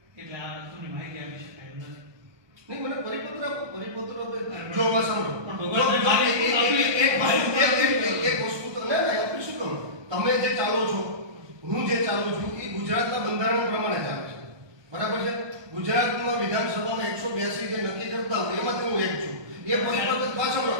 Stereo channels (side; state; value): left; late; 1.2 ms